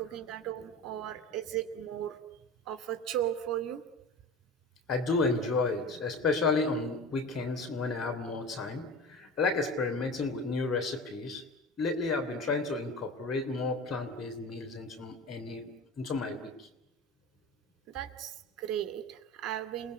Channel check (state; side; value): normal; both; correlation 0.32